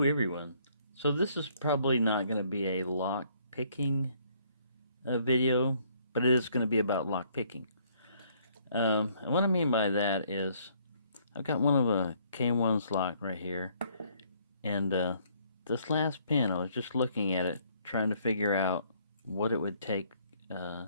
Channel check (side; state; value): both; inverted; correlation -0.65